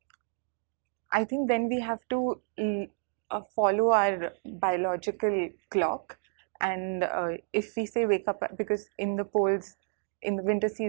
I think then we have to follow our biological clock, and if we say wake up, because in the poles, in the winter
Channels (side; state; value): left; silent; 58 dB below the other